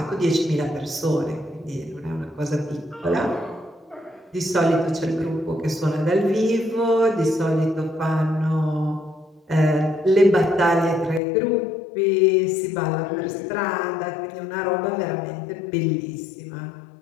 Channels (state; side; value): drops out; right; at 11.2 s